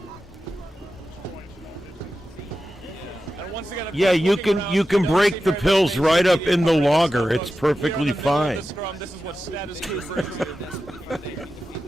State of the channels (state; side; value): normal; both; correlation 0.92